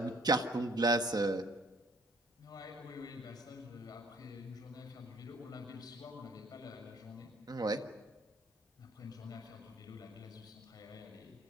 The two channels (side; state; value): both; normal; correlation 0.60